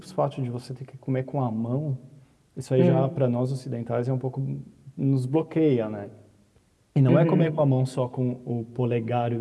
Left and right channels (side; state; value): both; identical; correlation 1.00